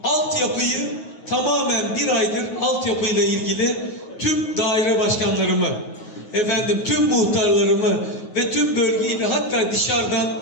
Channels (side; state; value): right; late; 9.4 ms